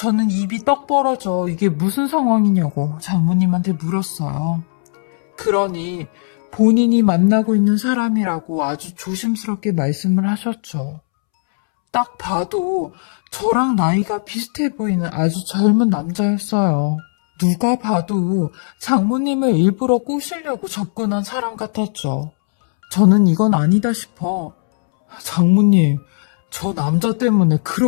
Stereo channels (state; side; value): silent; right; 68 dB below the other